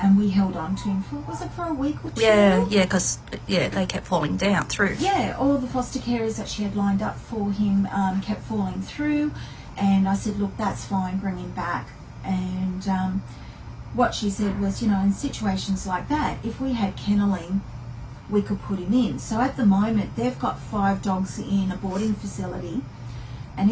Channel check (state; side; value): identical; both; correlation 1.00